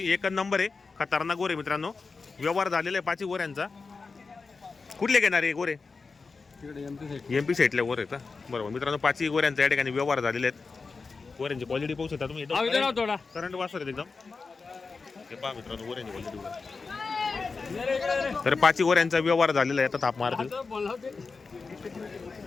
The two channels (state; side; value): quieter; right; 4.4 dB